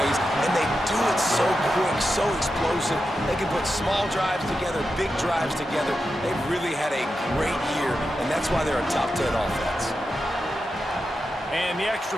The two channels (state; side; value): normal; both; correlation 0.89